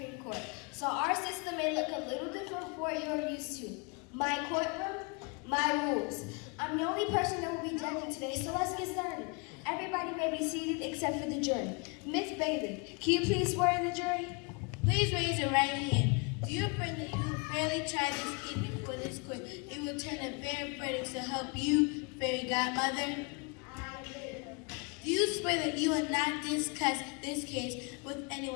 Court, so our system may look a little different from what you're used to. My courtroom, my rules. I'm the only person that will be judging today, so let's get started. Everybody may be seated except for the jury. Miss Bailey, can you please swear in the jury? Please raise your right hand. Do you affirm that you will fairly try this case before this court? You will turn a fair verdict to help you, fairy godmother? I do. Do you swear that you will not discuss this case with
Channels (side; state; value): right; quieter; 32.0 dB